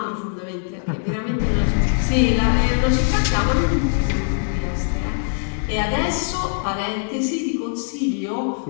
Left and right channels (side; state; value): right; silent; digital silence